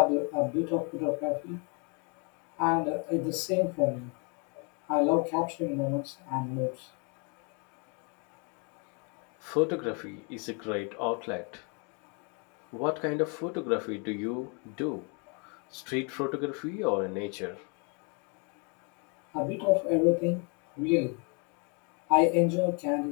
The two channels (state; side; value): quieter; right; 35.4 dB